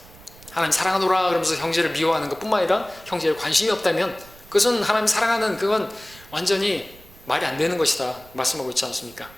하나님 사랑하노라 그러면서 형제를 미워하는 것뿐만 아니라 형제에 관심이 없다면 그것은 하나님 사랑하는, 그건 완전히 말이 안 되는 것이다 말씀하고 있지 않습니까?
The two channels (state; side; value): noise; right; rumble, 23 dB below the sound